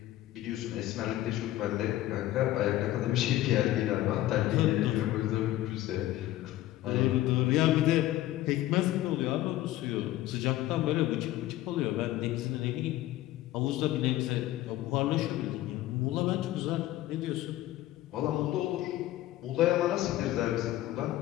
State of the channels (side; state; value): right; quieter; 15.0 dB